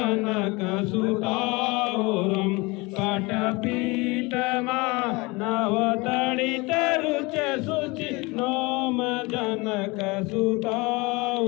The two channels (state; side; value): quieter; right; 25.0 dB